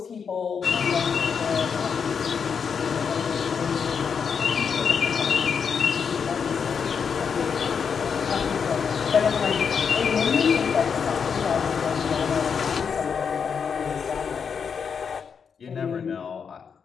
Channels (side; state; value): right; quieter; 6.5 dB